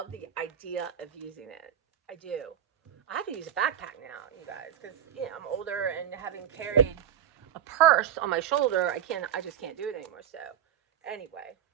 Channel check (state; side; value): quieter; left; 9.5 dB